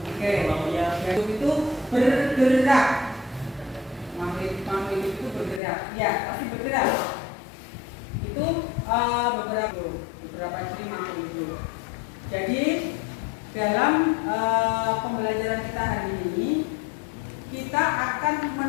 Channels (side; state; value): right; drops out; at 5.6 s